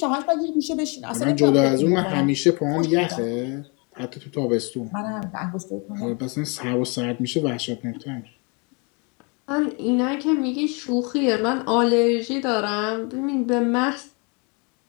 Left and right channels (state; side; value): quieter; right; 32.1 dB